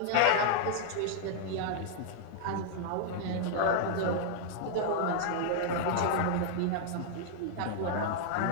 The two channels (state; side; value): different; both; correlation 0.00